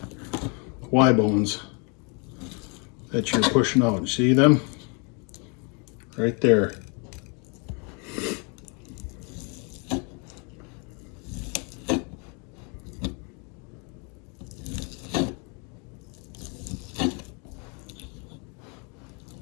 Y bones, that you're pushing out. See them? Right there.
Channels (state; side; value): quieter; right; 34.2 dB